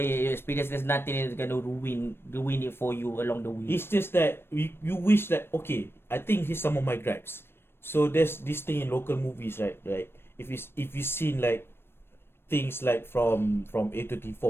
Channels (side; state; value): right; late; 0.11 ms